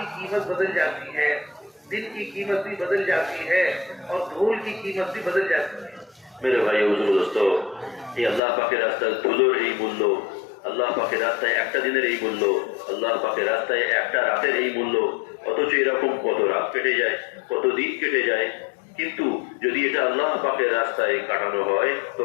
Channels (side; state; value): right; drops out; at 8.4 s